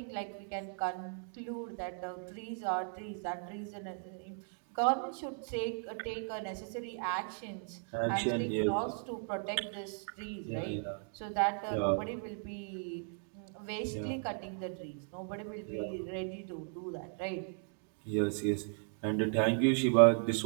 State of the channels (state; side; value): silent; left; 53 dB below the other